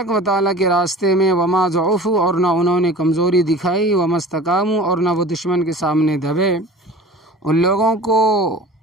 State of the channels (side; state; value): both; normal; correlation 0.40